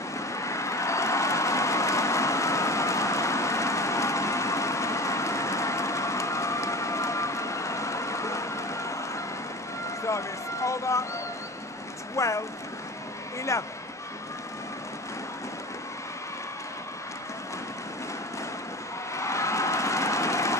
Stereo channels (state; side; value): normal; both; correlation 0.34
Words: Service over, 12, 11.